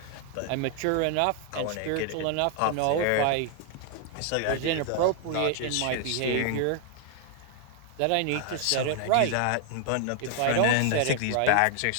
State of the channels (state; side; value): different; both; correlation 0.00